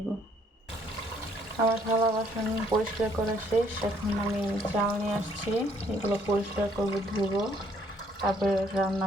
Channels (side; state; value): both; normal; correlation 0.65